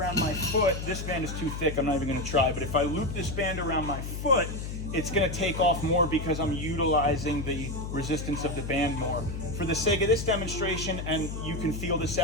my foot, this band is too thick, I'm not even going to try, but if I loop this band around my foot, it's going to take off more because I'm utilizing the resistance of the band more. For the sake of this demonstration, and you can feel this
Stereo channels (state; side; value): noise; left; hum, 6 dB below the sound